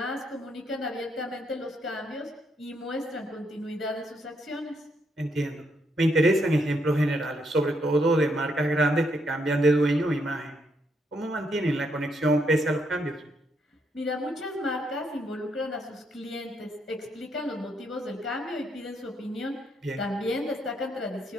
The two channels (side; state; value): both; normal; correlation 0.76